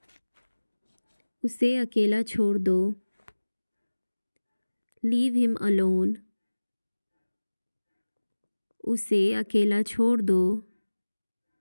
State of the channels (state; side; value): inverted; both; correlation -1.00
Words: उसे अकेला छोड़ दो। Leave him alone. उसे अकेला छोड़ दो।